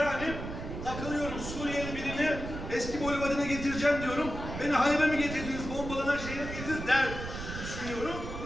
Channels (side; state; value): right; noise; rumble, 7 dB below the sound